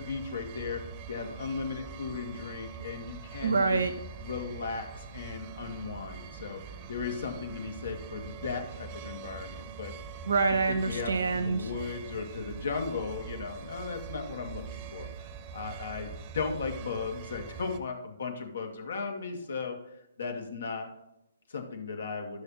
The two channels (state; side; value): inverted; both; correlation -0.64